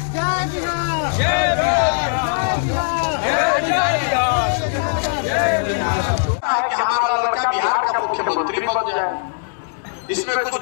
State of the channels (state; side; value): silent; right; digital silence